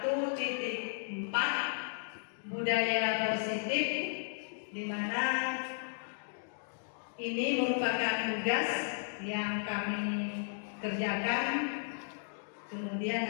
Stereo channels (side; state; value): right; silent; digital silence